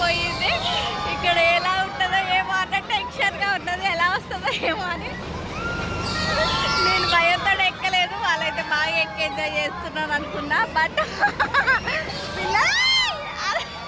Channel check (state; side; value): identical; both; correlation 1.00